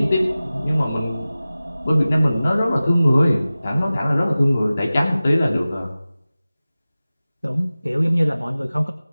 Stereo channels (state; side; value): inverted; both; correlation -0.97